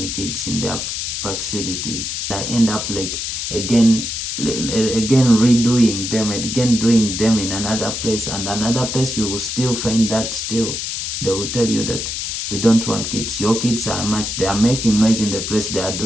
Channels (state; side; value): noise; left; hiss, 4 dB below the sound